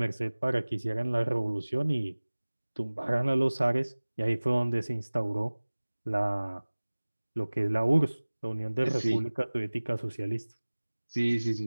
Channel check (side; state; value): both; inverted; correlation -1.00